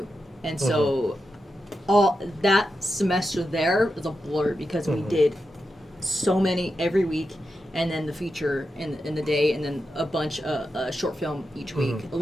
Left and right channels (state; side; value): normal; both; correlation 0.88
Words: and so all that semester there was a blur because we did so many every week, and then the feature in the day, and then a bunch of short film each week,